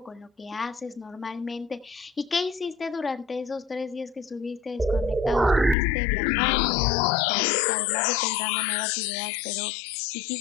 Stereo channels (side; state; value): right; drops out; at 5.8 s